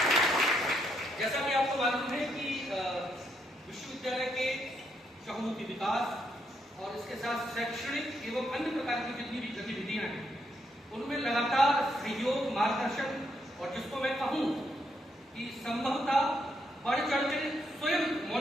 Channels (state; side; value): normal; both; correlation 0.76